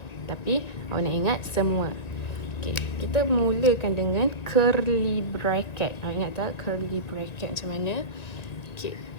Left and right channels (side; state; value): right; late; 1.7 ms